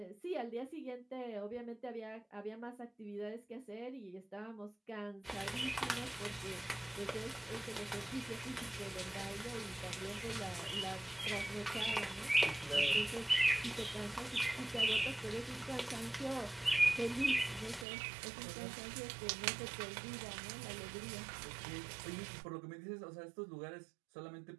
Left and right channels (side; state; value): left; drops out; at 17.9 s